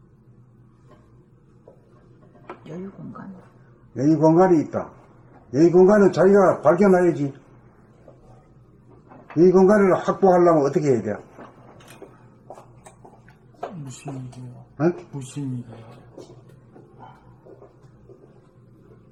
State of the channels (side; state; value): both; identical; correlation 1.00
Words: 여유 공간. 여유 공간이 있다. 여유 공간은 자기가 발견해야지. 여유 공간을 확보하려면 어떻게 해야 돼? 무심이고요. 응? 무심이고요.